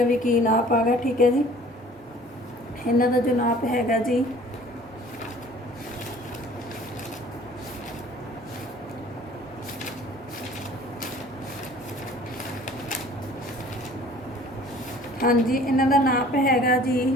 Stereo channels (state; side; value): normal; both; correlation 0.50